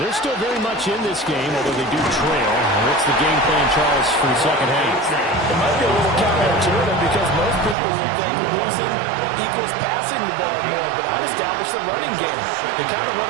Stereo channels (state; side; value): drops out; left; at 7.8 s